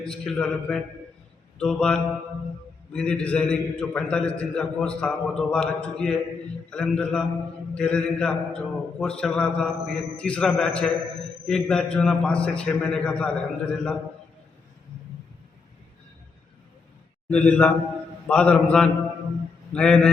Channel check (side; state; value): right; quieter; 4.6 dB